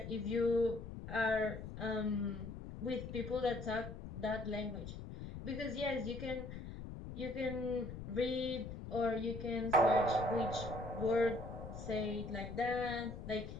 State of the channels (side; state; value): left; noise; rumble, 9 dB below the sound